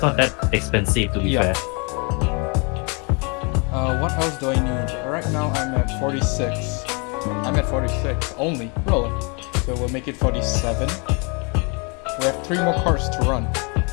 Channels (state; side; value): quieter; right; 33.3 dB